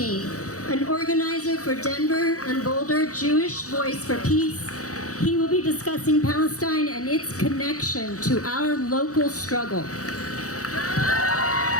an organizer for Denver and Boulder Jewish Voice for Peace. He will be discussing Palestine and its connection to our local struggle.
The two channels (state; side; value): late; right; 0.66 ms